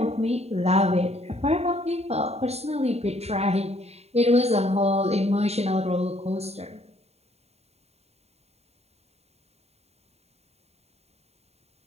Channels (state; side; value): late; left; 0.30 ms